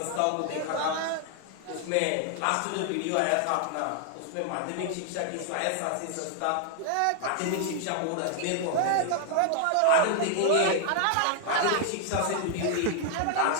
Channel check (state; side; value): different; both; correlation 0.00